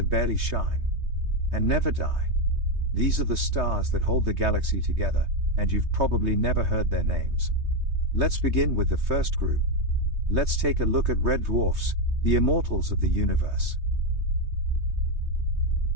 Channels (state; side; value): late; left; 3.2 ms